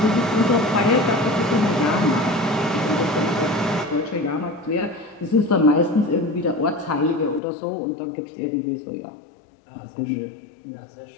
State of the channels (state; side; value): drops out; right; at 7.4 s